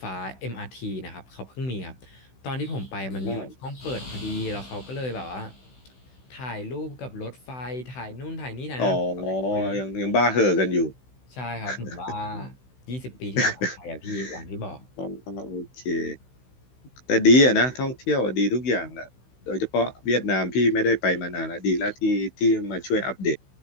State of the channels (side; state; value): right; late; 16 ms